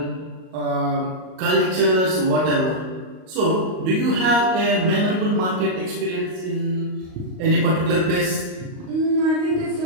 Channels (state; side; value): late; left; 38 ms